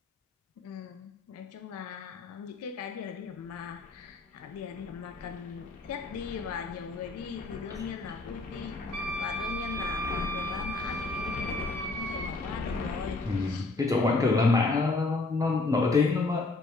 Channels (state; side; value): quieter; right; 3.4 dB